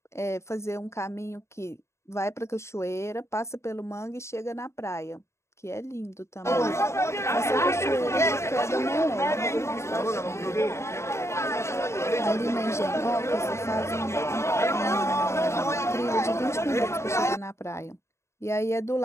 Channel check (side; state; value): right; late; 0.13 ms